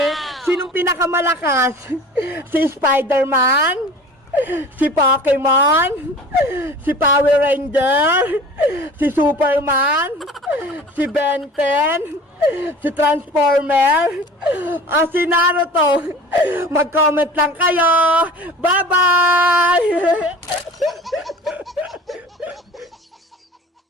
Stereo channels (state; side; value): normal; both; correlation 0.42